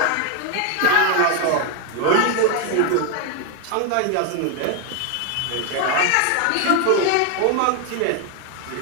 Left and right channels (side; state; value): both; different; correlation 0.01